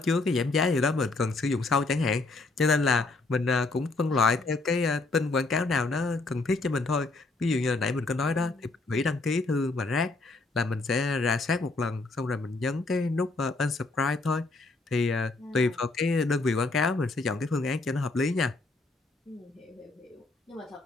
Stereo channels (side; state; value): right; quieter; 3.4 dB